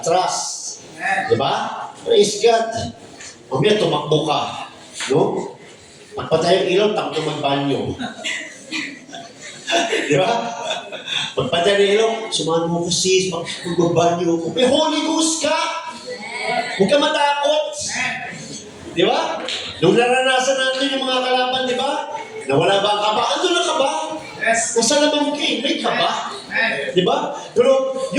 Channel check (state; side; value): identical; both; correlation 1.00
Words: Di ba? Praise God. Mamaya tumakbo ka. No? Pagpatay ang ilaw, takbo magbanyo. Di ba? Pagpatay ang ilaw, sumahan mo ko sis, magbanyo ko. May Holy Ghost ka! Huwag ka matakot. Di ba? Nung naranasan natin yung mga kalaban, di ba? Nawala ba ang kaba? Ando na kaba? Nasa laman ka eh. May kaba. Di ba? Pero